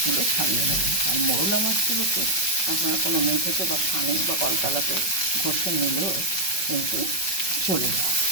ছাড়িয়ে নেবেন। আর মোরলা মাছগুলোকে আপনারা কোনো মেঝেতে বা ছানে বা কলতলাতে ঘষে নিলেও কিন্তু চলে যায়,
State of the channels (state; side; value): late; right; 5.4 ms